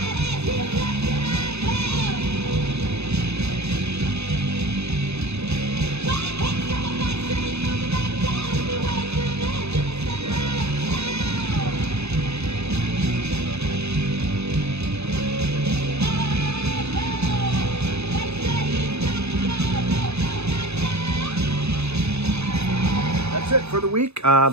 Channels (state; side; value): late; left; 0.80 ms